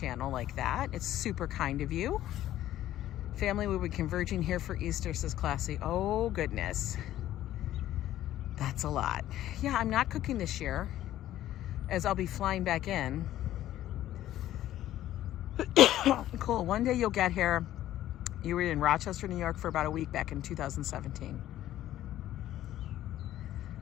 like that. It's super kind of you. Family will be converging here for Easter, says Classy. Oh goodness. That's a lot. Yeah, I'm not cooking this year, as I'll be flying back in. Cool. One day you'll get here. You were in Rochester, New York for about a week back in 2017.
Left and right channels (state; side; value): quieter; right; 13.2 dB